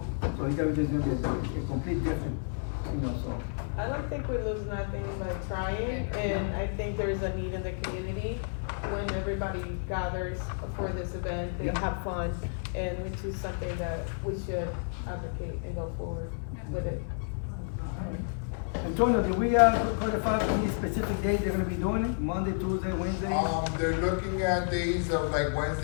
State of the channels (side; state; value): right; silent; digital silence